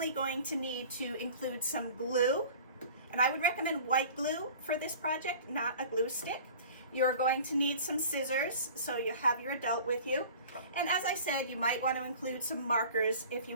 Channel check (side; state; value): both; inverted; correlation -0.43